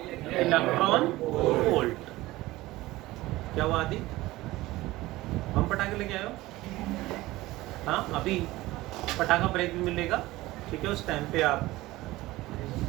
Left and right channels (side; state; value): left; quieter; 18.3 dB